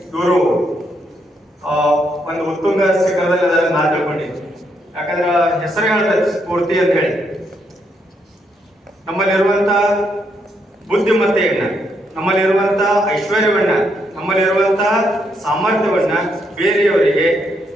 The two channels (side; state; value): both; normal; correlation 0.77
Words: ಇವರು ಒಂದು ಉತ್ತುಂಗ ಶಿಖರದಲ್ಲಿ ಅದನ್ನ ನಾನು ತಿಳ್ಕೊಂಡಿದ್ದೆ. ಯಾಕಂದ್ರೆ ಹೆಸರು ಹೇಳ್ತಾರೆ ಸ್ಫೂರ್ತಿ ಅಂತ ಹೇಳಿ. ನಮ್ಮಲ್ಲಿರುವಂತ ಬುದ್ಧಿಮತ್ತೆಯನ್ನ, ನಮ್ಮಲ್ಲಿರುವಂತ ಐಶ್ವರ್ಯವನ್ನ, ನಮ್ಮಲ್ಲಿರುವಂತ ಸಾಮರ್ಥ್ಯವನ್ನ ಬೇರೆಯವರಿಗೆ